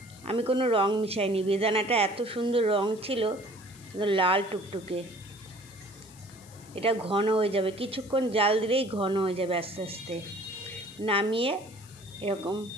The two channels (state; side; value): noise; left; hiss, 22 dB below the sound